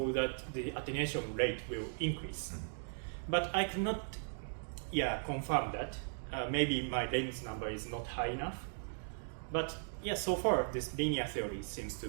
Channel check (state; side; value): silent; left; digital silence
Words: that the attenuation rate will increase. But I cannot confirm that. Maybe my length number is not high enough. But yeah, so far this linear theory seems to